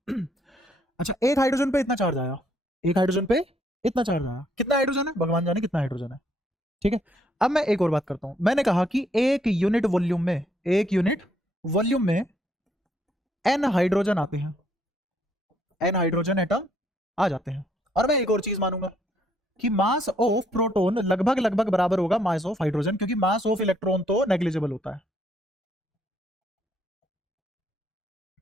अच्छा, एक हाइड्रोजन पे इतना चार्ज आया, एक हाइड्रोजन पे इतना चार्ज आया, कितना हाइड्रोजन है भगवान जाने कितना हाइड्रोजन है। ठीक है, अब मैं एक और बात करता हूं। मैंने कहा कि एक यूनिट वॉल्यूम में, एक यूनिट वॉल्यूम में एन हाइड्रोजन आते हैं, एन हाइड्रोजन एटम आ जाते हैं। और मैं एक और चीज मानूंगा कि मास ऑफ प्रोटॉन लगभग लगभग बराबर होगा मास ऑफ हाइड्रोजन, क्योंकि मास ऑफ इलेक्ट्रॉन तो नेग्लिजिबल होता है।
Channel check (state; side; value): normal; both; correlation 0.70